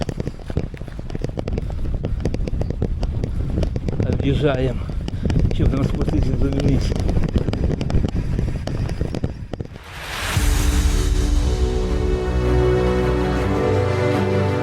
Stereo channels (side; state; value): both; identical; correlation 1.00